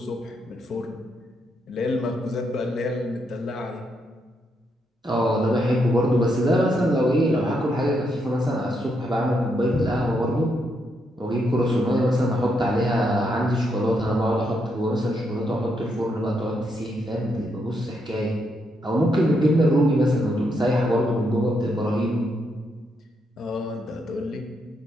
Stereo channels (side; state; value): both; normal; correlation 0.79